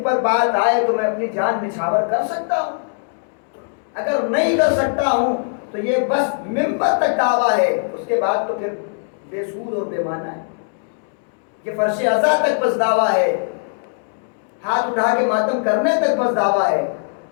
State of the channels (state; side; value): silent; right; digital silence